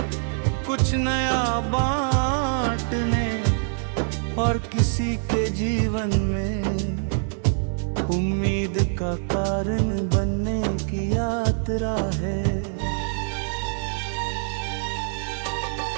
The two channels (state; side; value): silent; left; digital silence